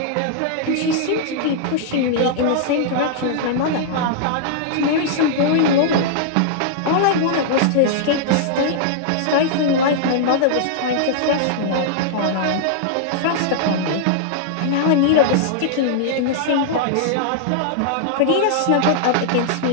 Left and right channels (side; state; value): both; different; correlation -0.01